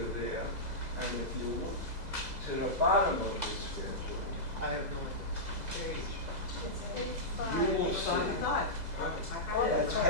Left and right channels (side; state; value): left; late; 2.0 ms